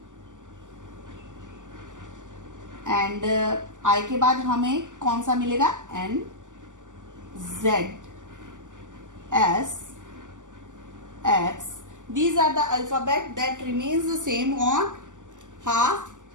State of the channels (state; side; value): late; left; 0.87 ms